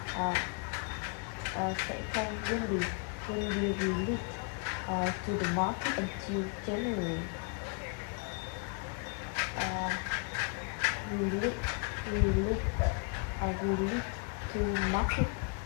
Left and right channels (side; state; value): right; quieter; 39.1 dB